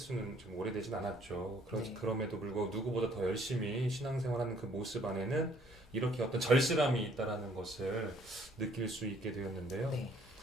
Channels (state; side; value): normal; both; correlation 0.62